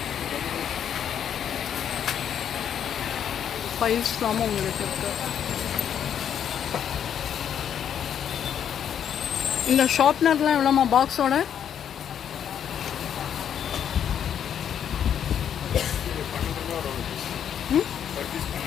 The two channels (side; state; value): right; quieter; 9.0 dB